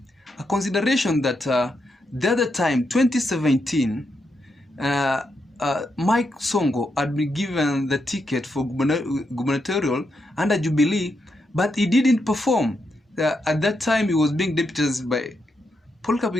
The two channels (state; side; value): normal; both; correlation 0.82